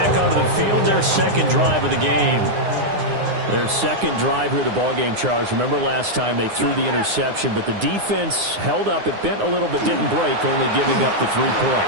onto the field, their second drive of the game. Their second drive here of the ballgame, Charles. Remember last time they threw the interception, but the defense held up. It bent a little but didn't break, only giving up the 3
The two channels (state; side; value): late; left; 9.7 ms